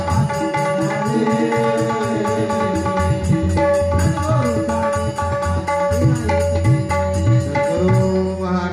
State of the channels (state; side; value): identical; both; correlation 1.00